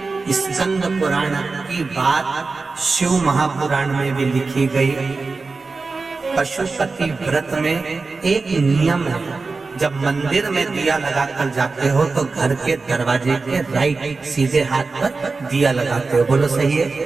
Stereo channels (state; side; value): quieter; left; 4.0 dB